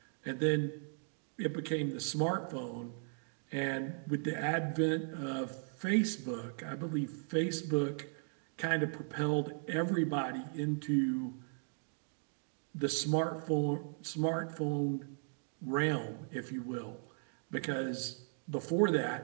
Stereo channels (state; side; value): silent; left; 53 dB below the other